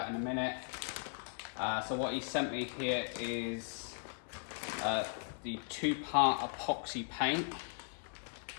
in a minute. So what he sent me here is the 2-part epoxy paint,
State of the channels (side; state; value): right; silent; 53 dB below the other